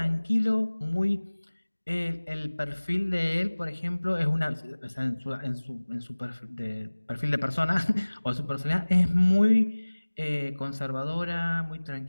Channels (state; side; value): inverted; both; correlation -1.00